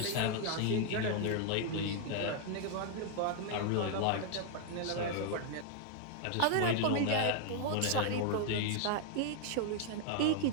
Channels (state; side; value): different; both; correlation 0.00